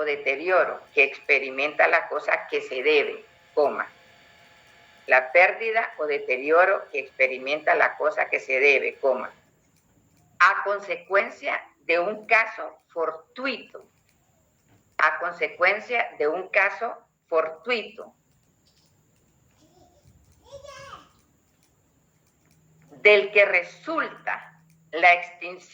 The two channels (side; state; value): both; identical; correlation 1.00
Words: deterioro que experimenta la cosa que se debe, coma. La pérdida o deterioro que experimenta la cosa que se debe, coma. A consecuencia de un caso fortuito. A consecuencia de un caso fortuito. Del que resulta la